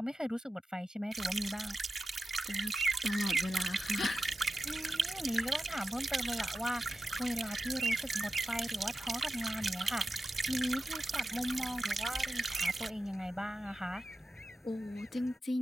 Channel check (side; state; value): both; normal; correlation 0.92